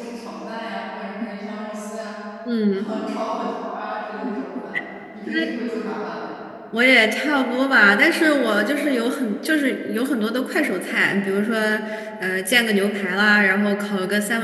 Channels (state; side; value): identical; both; correlation 1.00